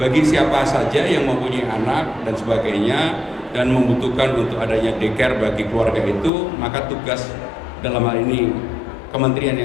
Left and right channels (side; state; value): right; drops out; at 6.3 s